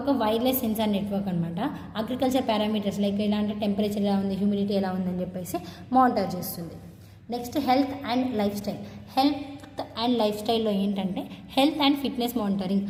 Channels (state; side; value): identical; both; correlation 1.00